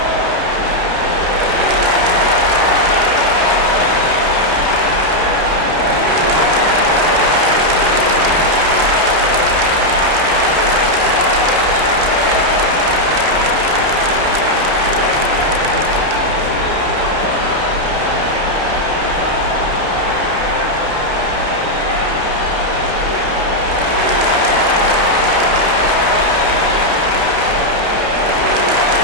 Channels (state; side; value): late; left; 31 ms